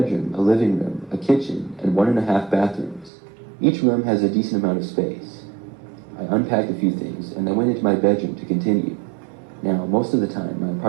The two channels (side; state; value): left; drops out; at 3.1 s